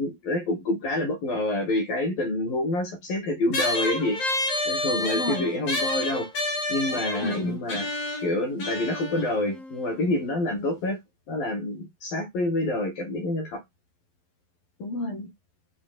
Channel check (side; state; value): right; late; 11 ms